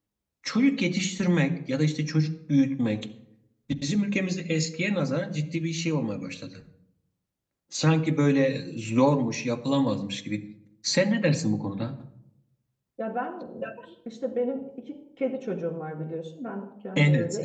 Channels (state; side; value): identical; both; correlation 1.00